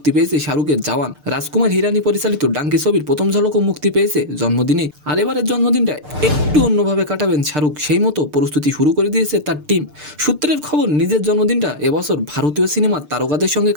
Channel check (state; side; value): late; left; 6.7 ms